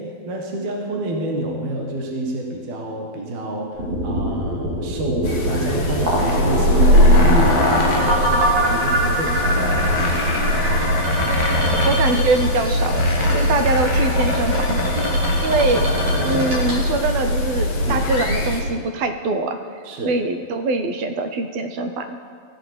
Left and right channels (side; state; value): left; late; 12 ms